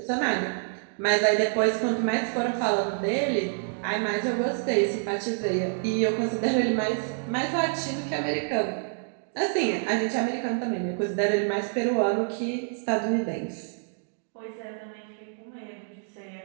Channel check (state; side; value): silent; left; digital silence